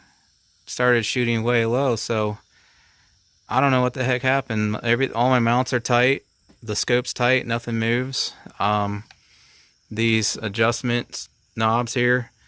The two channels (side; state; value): both; identical; correlation 1.00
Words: started shooting way low. So I don't know what the heck happened. All my mounts are tight, the scope's tight, nothing moves. These adjustment knobs here,